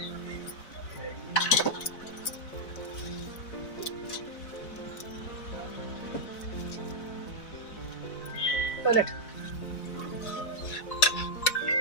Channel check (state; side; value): late; right; 4.0 ms